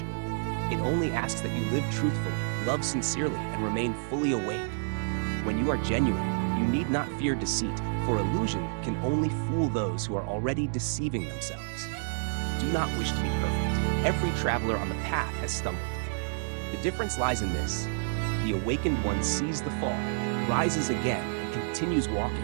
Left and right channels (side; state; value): left; silent; digital silence